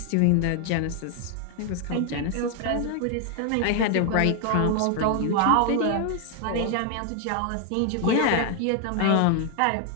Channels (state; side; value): different; both; correlation 0.00